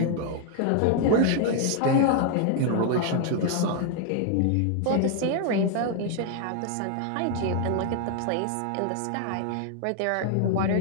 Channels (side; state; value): both; different; correlation 0.00